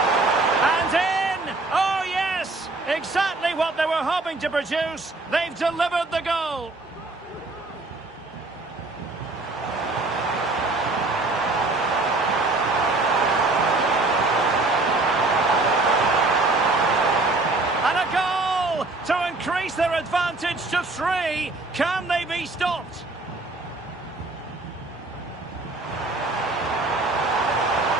And in! Oh, yes! Exactly what they were hoping to produce. They've delivered the goal. And a goal to increase their their advantage to 3. Can they be stopped?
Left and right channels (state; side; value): quieter; left; 3.2 dB